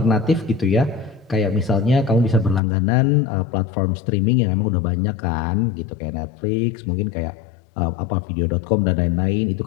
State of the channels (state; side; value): drops out; right; at 2.6 s